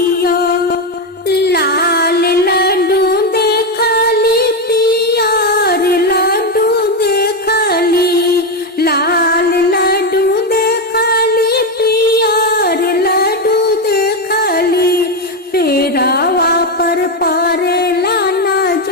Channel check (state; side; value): normal; both; correlation 0.09